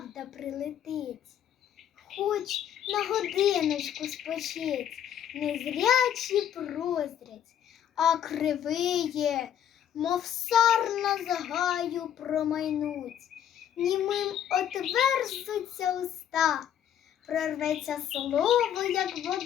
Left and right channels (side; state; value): right; quieter; 9.9 dB